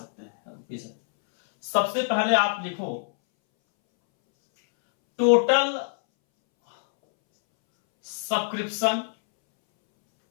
हैं। सबसे पहले आप लिखो total subscription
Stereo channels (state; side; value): silent; right; 62 dB below the other